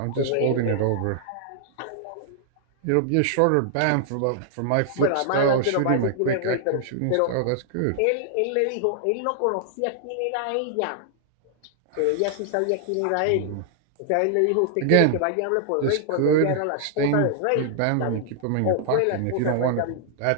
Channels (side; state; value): both; different; correlation -0.01